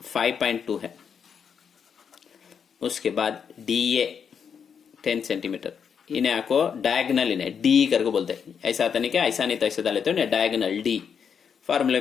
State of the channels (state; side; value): quieter; right; 7.0 dB